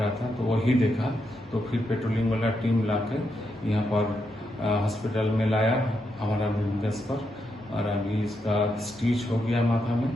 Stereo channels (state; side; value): normal; both; correlation 0.82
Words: था, तो वही देखा तो फिर पेट्रोलिंग वाला टीम लाके यहाँ पर हॉस्पिटल में लाया हमारा बिजनेस पर। और अभी इसका स्टिच हो गया माथा में